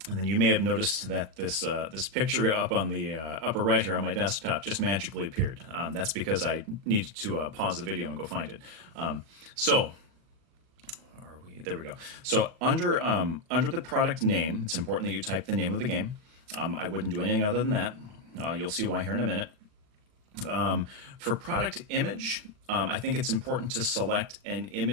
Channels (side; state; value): left; late; 39 ms